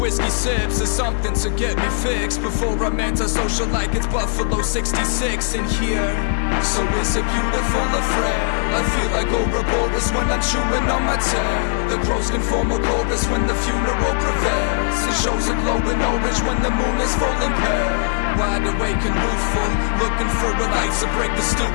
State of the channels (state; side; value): silent; right; digital silence